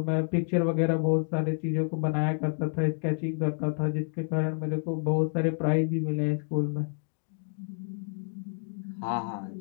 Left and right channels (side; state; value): right; silent; digital silence